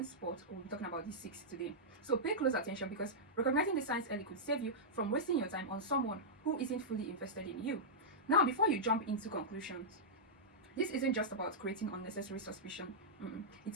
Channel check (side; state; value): both; normal; correlation -0.11